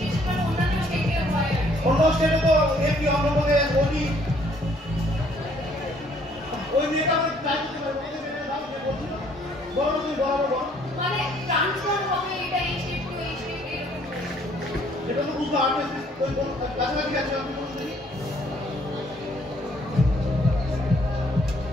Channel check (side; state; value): both; normal; correlation 0.63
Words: অন্যান্য স্টেটে হয়। অন্য স্টেটে তো এমপি, অন্ধ্রপ্রদেশ, ওডি। ওই মেয়েটা আমরা ট্রাই করতে পারবো। এই যে মেয়েটার নাম যে বলছিল, বলো তুমি, বলো। মানে ট্রান্সফার হবে, এটা এই স্টেট টু এই স্টেট এরকম। এটা তো বুঝতে পারবে, ওই কাছাকাছি আছে, আপনি বলুন দেখি।